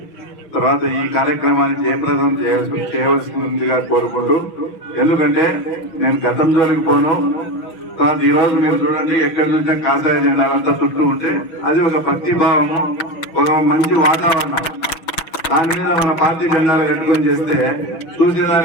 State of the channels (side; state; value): right; late; 6.2 ms